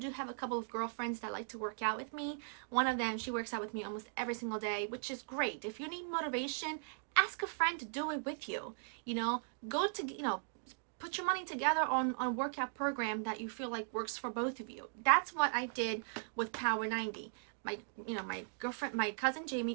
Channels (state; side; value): silent; left; digital silence